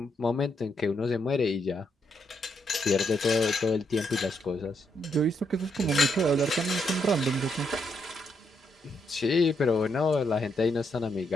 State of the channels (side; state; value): both; normal; correlation 0.78